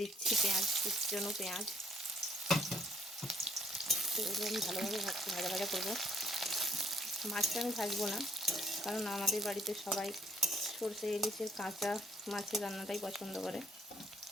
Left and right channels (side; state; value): both; normal; correlation 0.63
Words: দিচ্ছি পেঁয়াজ, কুচনো পেঁয়াজ। তো এগুলো আমি ভালোভাবে ভাজা ভাজা করবো। মাছটা আমি ভাজবো না, কারণ আমাদের বাড়িতে সবাই সরষে ইলিশের কাঁচা মাছের রান্নাটাই পছন্দ করে।